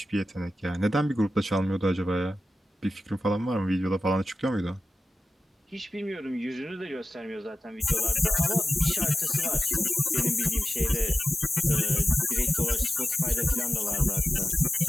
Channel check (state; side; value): normal; both; correlation 0.93